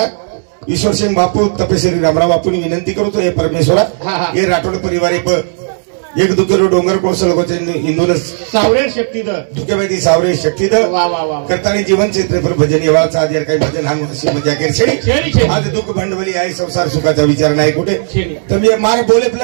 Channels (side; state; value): left; silent; digital silence